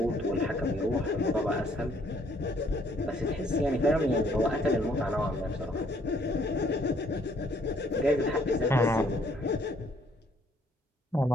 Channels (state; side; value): normal; both; correlation 0.65